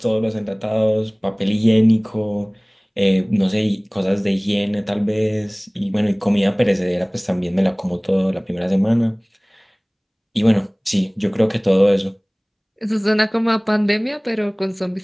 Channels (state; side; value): identical; both; correlation 1.00